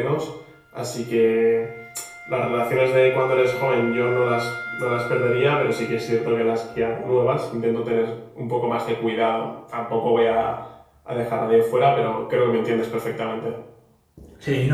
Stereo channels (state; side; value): identical; both; correlation 1.00